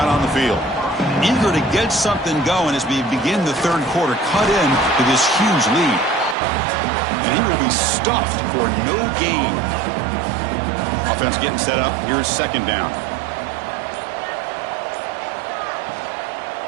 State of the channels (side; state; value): left; drops out; at 6.4 s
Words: on the field. Eager to get something going as we begin the third quarter. Cut in to this huge lead. And he will be stuffed for no gain. Offense getting set up. Here's second down.